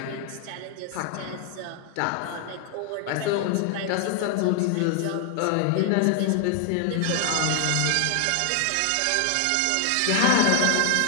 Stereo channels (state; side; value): different; both; correlation 0.00